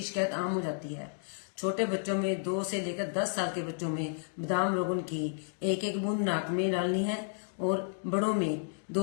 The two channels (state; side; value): silent; right; digital silence